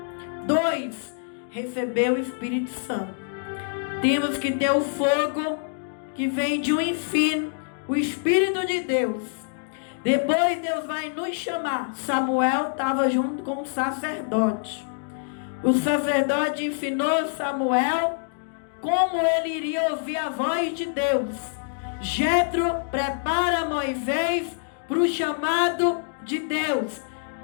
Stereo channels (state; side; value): silent; right; digital silence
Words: 2, receber o Espírito Santo. Temos que ter o fogo que vem de um ensino, o Espírito de Deus. Depois Deus vai nos chamar. Samuel estava junto com o sacerdote. O sacerdote ensinou Samuel como ele iria ouvir a voz de Deus. Jetro prepara Moisés para o chamado de Deus.